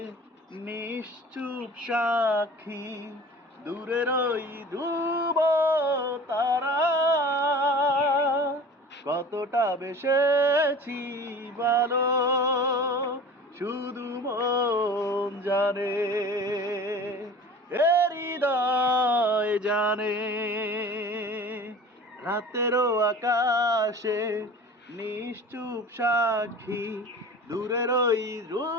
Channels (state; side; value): normal; both; correlation 0.41